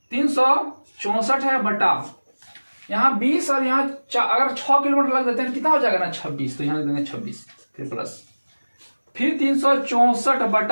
है बटा यहाँ 20, और यहाँ अगर 6 किलोमीटर लग देते हैं कितना हो जाएगा ना 26, तो यहाँ लग देंगे 26, फिर प्लस, फिर 364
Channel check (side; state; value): both; inverted; correlation -1.00